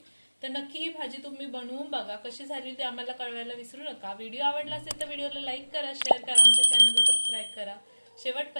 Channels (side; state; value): both; inverted; correlation -1.00